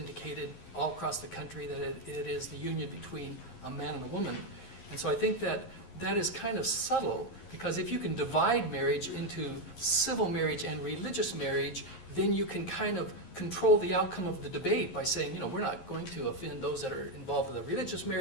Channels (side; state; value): right; late; 11 ms